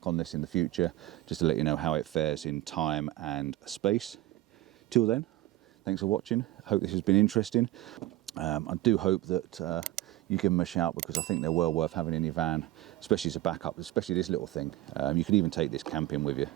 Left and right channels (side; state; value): left; quieter; 16.1 dB